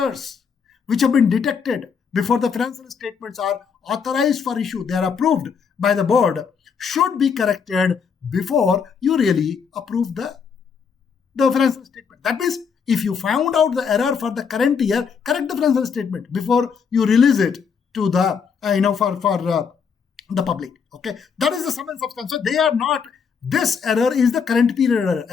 which have been detected before the financial statements are authorized for issue, they are approved by the board, should be corrected before you really approve the financial statement. That means if you found out the error for the current year, correct the financial statement before you release it to the for the public. Okay, that is the sum and substance. So they are not. This error is the current period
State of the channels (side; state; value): right; quieter; 6.2 dB